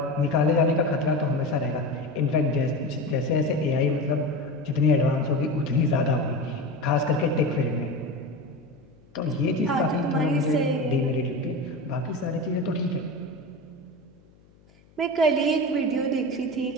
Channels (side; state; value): left; noise; hum, 29 dB below the sound